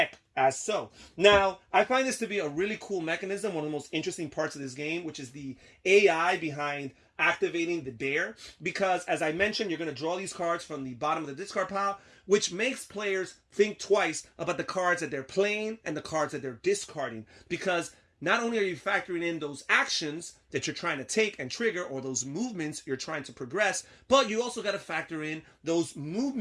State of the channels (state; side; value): identical; both; correlation 1.00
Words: as so. Now, I find this to be a really cool mechanism, one of the most interesting parts of this game, which is the AI behind activating the bear, because as I mentioned, you're going to draw these cards from the bottom of the discard pile, which makes players think twice about the cards that they're playing and the cards that they're discarding, because not only are you factoring in those actions that you're trying to take and trigger, or those movements you're trying to progress, but you also got to factor in those